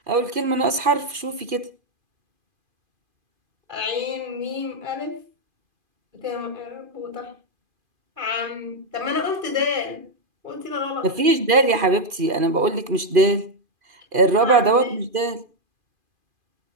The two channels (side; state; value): left; late; 2.4 ms